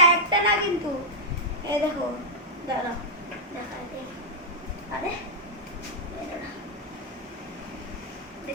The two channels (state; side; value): normal; both; correlation -0.08